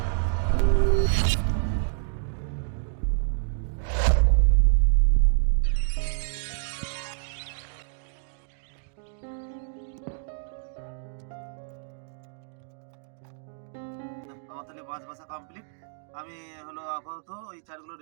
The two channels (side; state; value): left; silent; digital silence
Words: আমার তাহলে মাছ বাছা কমপ্লিট। আমি হলো আপাতত ওই চারগুলো